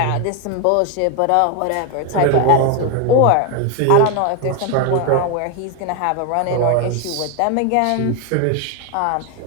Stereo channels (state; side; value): different; both; correlation 0.02